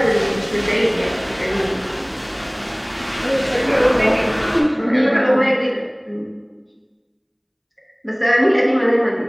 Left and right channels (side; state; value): both; identical; correlation 1.00